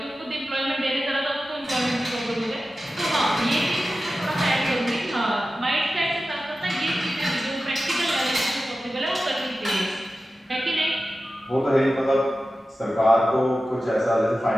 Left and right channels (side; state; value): both; normal; correlation 0.94